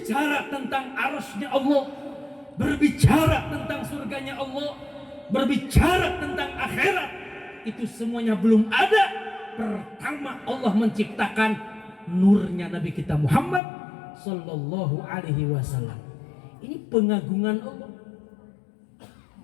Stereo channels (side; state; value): right; drops out; at 13.6 s